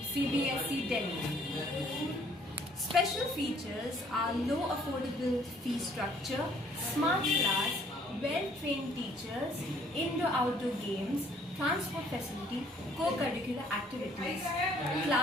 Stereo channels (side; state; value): both; normal; correlation 0.60